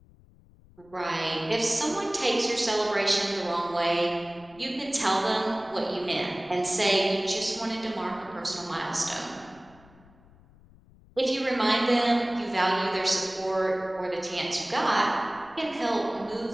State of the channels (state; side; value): noise; left; rumble, 26 dB below the sound